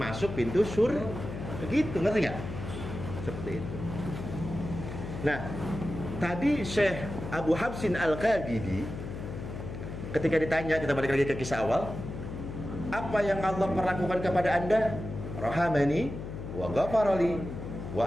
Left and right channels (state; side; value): noise; left; hum, 8 dB below the sound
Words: pintu surga. Begitu, ngerti nggak? Seperti itu. Nah tadi Syekh Abu Habsin Al-Qabidi ketika ditanya, kita balik lagi ke kisah awal, apa yang Allah perlakukan kepada anda? Rahamani wa ghafarali